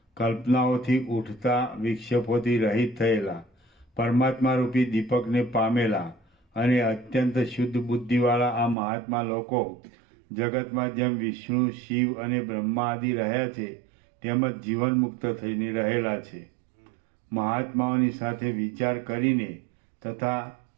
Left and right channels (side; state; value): left; drops out; at 8.8 s